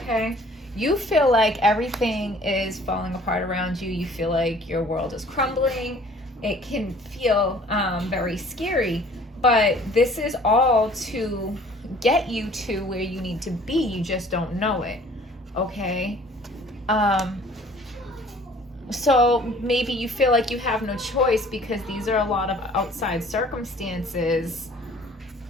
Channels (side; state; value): both; normal; correlation 0.53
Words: you feel like everything is falling apart around you. You feel like your world is crumbling. It can feel very scary, but this is all to get you to where you need to be. You just don't know it, okay? So maybe you feel like you have no choice because these are a lot of outside circumstances